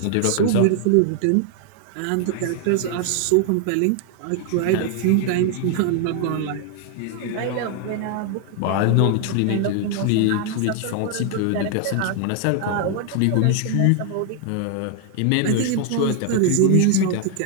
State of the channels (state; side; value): different; both; correlation 0.00